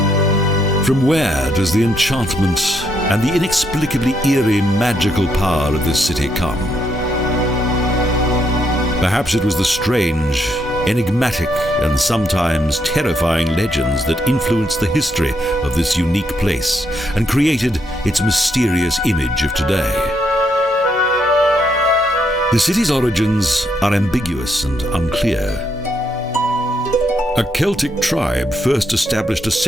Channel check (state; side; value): normal; both; correlation 0.76